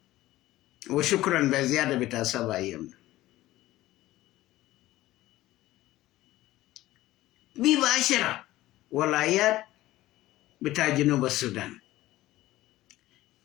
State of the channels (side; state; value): right; quieter; 16.3 dB